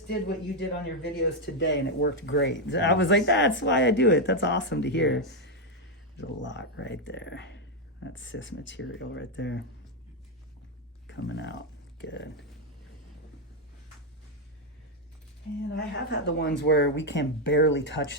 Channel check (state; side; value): normal; both; correlation 0.02